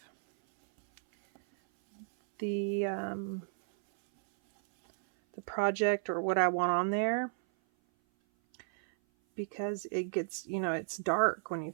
the project or what I want on there, because it gets, you know, it's dark when you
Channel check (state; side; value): silent; left; 56 dB below the other